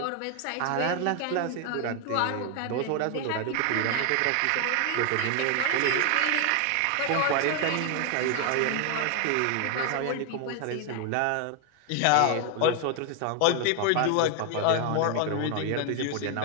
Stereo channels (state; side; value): different; both; correlation 0.01